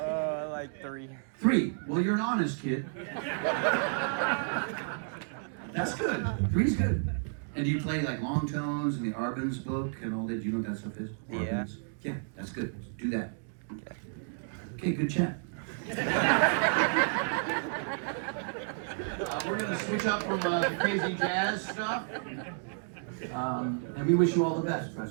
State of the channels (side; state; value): left; silent; digital silence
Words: Like 3. 3. Well, you're an honest kid. That's good. 3's good. And do you play like long tones and the Arbenz book and all that? Do you know what that stuff is? Yeah. Arbenz? Yeah, that's good. Do that. Okay. Okay, good chat. We're going to switch up from crazy jazz stuff. And we wish you all the best,